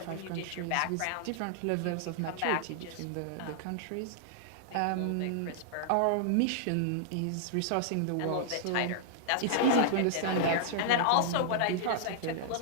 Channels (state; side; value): different; both; correlation -0.01